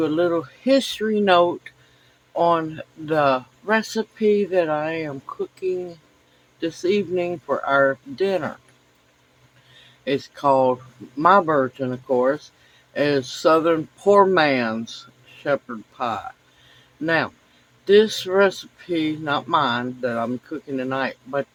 a little history note on the recipe that I am cooking this evening for our dinner. It's called, my version, of course, is Southern Poor Man's Shepherd Pie. Now, this recipe, not mine that I'm cooking tonight, but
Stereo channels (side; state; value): both; identical; correlation 1.00